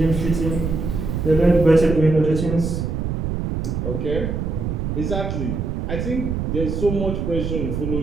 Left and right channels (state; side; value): noise; right; rumble, 2 dB below the sound